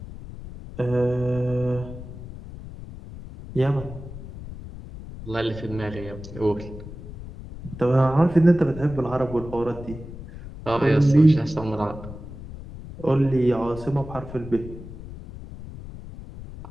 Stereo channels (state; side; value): noise; left; rumble, 13 dB below the sound